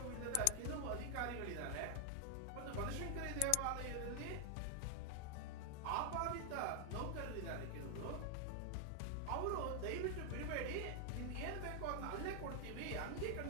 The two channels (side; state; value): both; different; correlation 0.00